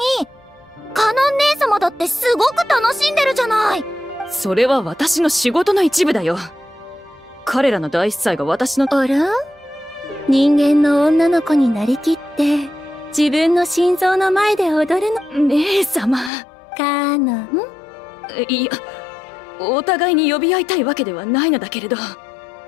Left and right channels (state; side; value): drops out; right; at 16.3 s